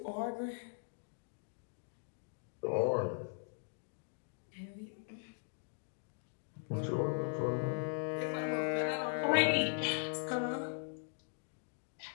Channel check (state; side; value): silent; right; digital silence